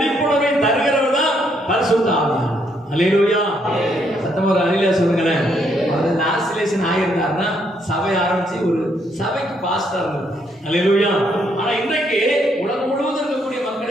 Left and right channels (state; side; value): normal; both; correlation 0.73